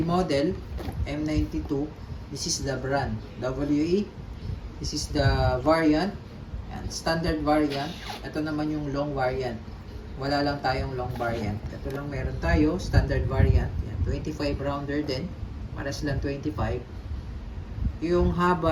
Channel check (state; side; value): identical; both; correlation 1.00